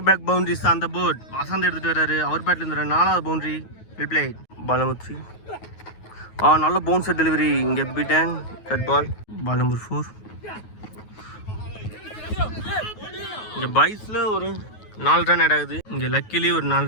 back boundaries on the board. Vasanth எடுத்துகிட்டு வர்றாரு. அவர் பேட்டில் இருந்தார் 4வது boundary. Well played. Ball number 3 நல்ல பவுன்சர் டெலிவரி. இங்கே beaten that ball. Ball number 4 இங்கே பைஸில் ஒரு 4 ரன் ஆட் ஆகுது. இங்கே லக்கிலி ஒரு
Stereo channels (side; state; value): right; late; 9.3 ms